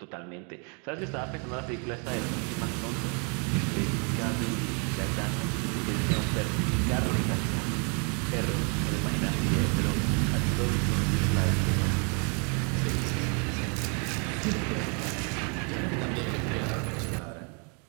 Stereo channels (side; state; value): left; quieter; 36.7 dB